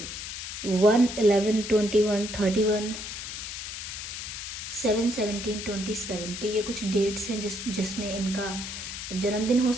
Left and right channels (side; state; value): left; noise; hiss, 7 dB below the sound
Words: 1, 11, 21, 31, 7, 17, 27। तो ये कुछ डेट्स हैं जिसमें इनका जन्मदिन हो